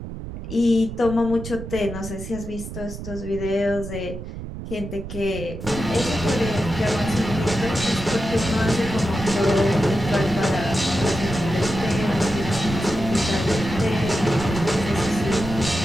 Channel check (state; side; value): noise; right; rumble, 9 dB below the sound